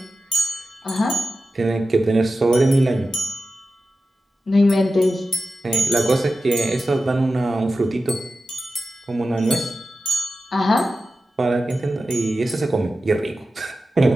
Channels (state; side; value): normal; both; correlation 0.93